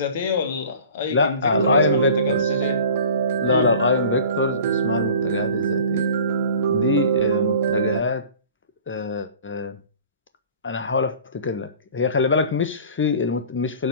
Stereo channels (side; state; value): both; inverted; correlation -0.45